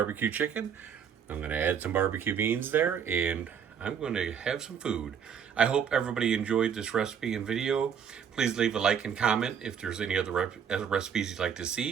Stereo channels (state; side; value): quieter; left; 7.6 dB